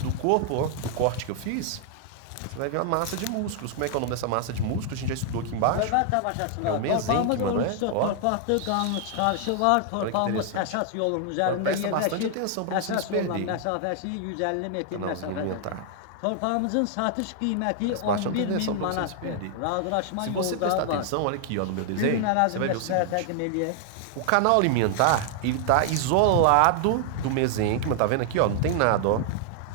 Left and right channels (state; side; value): different; both; correlation 0.00